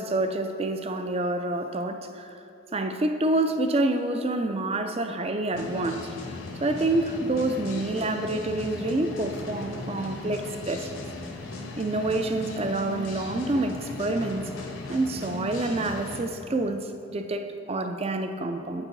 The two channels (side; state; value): both; normal; correlation 0.47